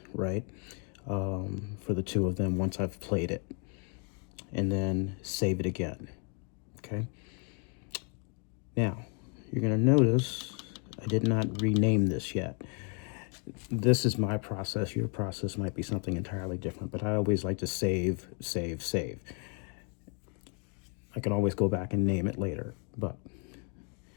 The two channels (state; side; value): quieter; right; 38.5 dB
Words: right, for the 2 of them once I've played it, and then save it again. Okay. Now, you're going to notice I did not rename this yet. This is my process. Your process might be something entirely different, but I always like to save, save, save. I can always go back and name it later, but